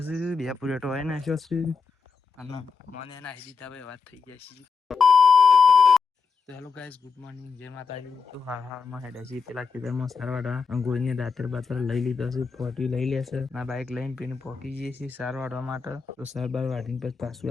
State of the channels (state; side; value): quieter; right; 5.1 dB